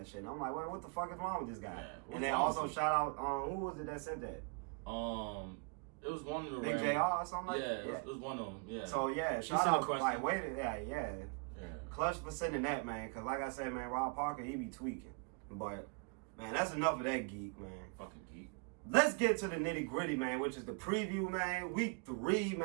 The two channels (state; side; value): quieter; left; 34.3 dB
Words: shit. And I'm like, wait, what the fuck is wrong with this guy? Yeah, and then also shout out, who was it that said that? It was one of the Big JR or something like that? Yeah, yeah, it was one of them, yeah. So, yeah, shout out, like, wait, yeah. Clutch for sending that, man, because like I said, man, Rob Parker, he be tweaking. But, man, that's enough of that geek, man. Fucking geek. Let's get to the nitty-gritty, man, which is the preview, man. Week 3,